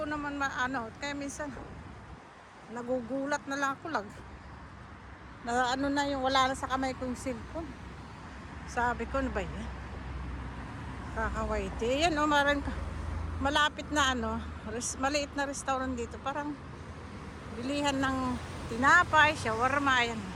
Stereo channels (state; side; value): identical; both; correlation 1.00